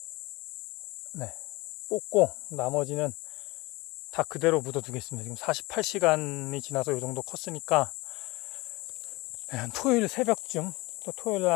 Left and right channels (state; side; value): quieter; right; 22.6 dB